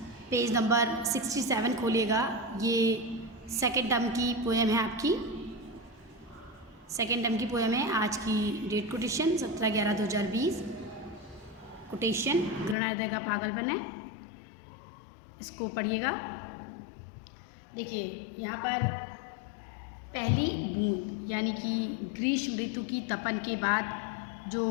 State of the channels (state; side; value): drops out; right; at 12.8 s